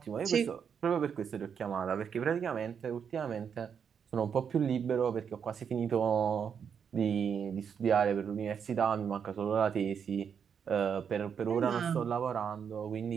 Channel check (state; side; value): quieter; left; 7.2 dB